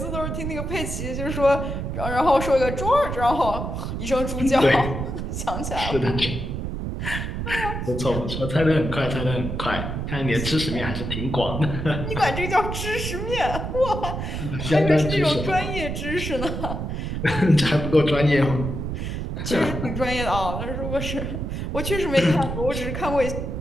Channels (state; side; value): noise; right; rumble, 4 dB below the sound